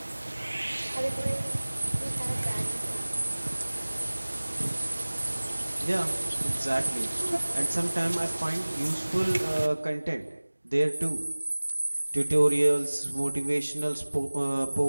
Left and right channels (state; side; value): inverted; both; correlation -1.00